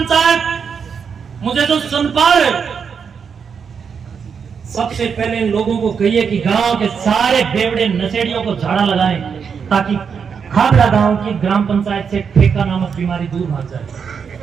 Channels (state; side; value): quieter; left; 6.5 dB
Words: मुझे तो सुन पा रहे, सबसे पहले इन लोगों को कहिए कि गांव के सारे बेवड़े नशेड़ियों को झाड़ा लगाएं, ताकि खाबड़ा गांव की ग्राम पंचायत से ठेका नामक बीमारी दूर भाग